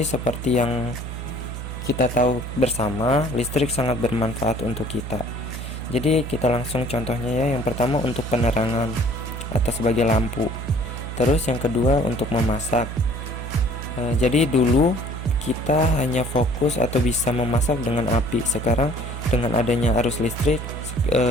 seperti yang kita tahu bersama, listrik sangat bermanfaat untuk kita. Jadi kita langsung contohnya ya. Yang pertama untuk penerangan atau sebagai lampu. Terus yang kedua untuk memasak. Jadi dulu kita hanya fokus atau bisa memasak dengan api. Sekarang dengan adanya arus listrik,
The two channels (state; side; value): noise; right; hum, 7 dB below the sound